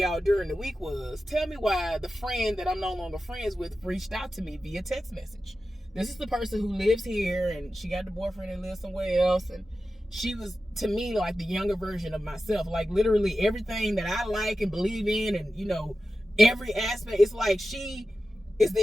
during the week was, tell me why the friend that I'm no longer friends with reached out to me via text message. This is the person who lives here, and she got the boyfriend and lives somewhere else. And she was, to me, like the younger version of myself. Like, literally everything that I like and believe in, and, you know, every aspect, it's like she is the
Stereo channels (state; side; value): normal; both; correlation 0.93